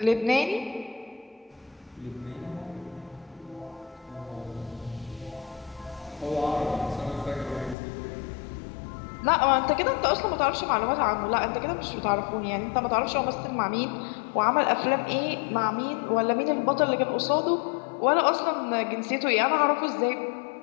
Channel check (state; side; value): drops out; right; at 7.8 s